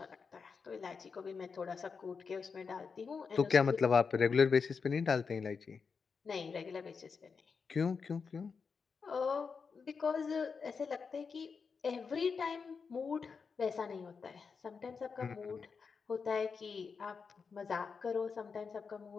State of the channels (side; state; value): right; quieter; 5.4 dB